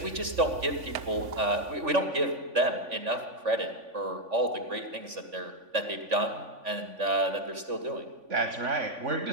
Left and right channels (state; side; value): late; left; 3.5 ms